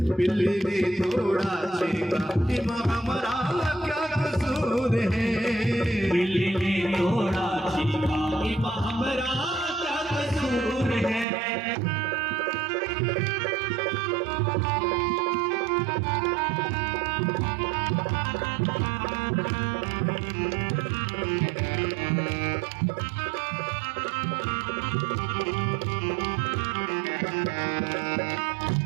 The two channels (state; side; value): drops out; left; at 11.2 s